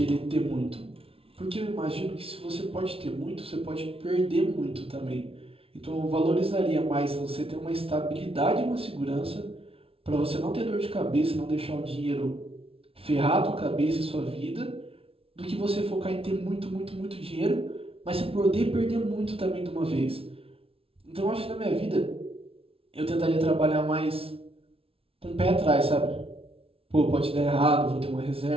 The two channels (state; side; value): late; left; 0.27 ms